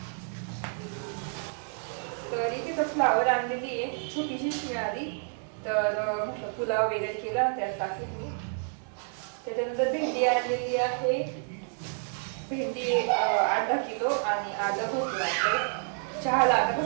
तर इथे तर फ्लावर आणलेली आहे, छोटीशीच मिळाली. तर म्हटलं पुलाव वगैरे केला त्यात टाकली. त्याच्यानंतर भेंडी आणलेली आहे, भेंडी 8-10 किलो आणि आलं भरपूर आहे. चहाला आता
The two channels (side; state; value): left; silent; 56 dB below the other